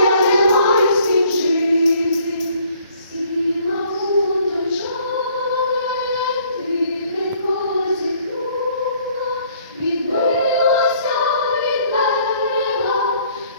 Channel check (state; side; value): inverted; both; correlation -0.61